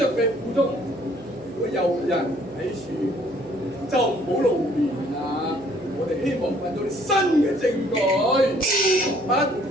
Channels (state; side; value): noise; right; hum, 23 dB below the sound